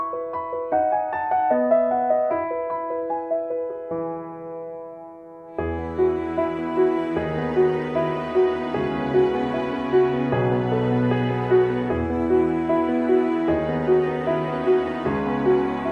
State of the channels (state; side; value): identical; both; correlation 1.00